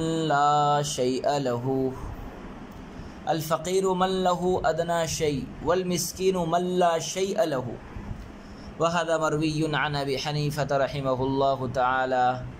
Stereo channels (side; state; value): both; identical; correlation 1.00